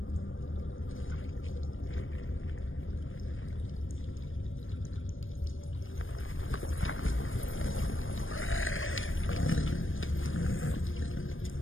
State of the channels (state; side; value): late; right; 0.59 ms